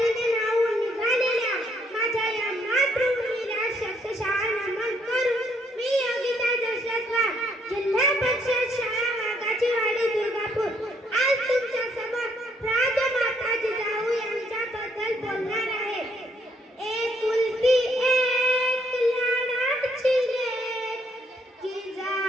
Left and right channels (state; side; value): normal; both; correlation 0.69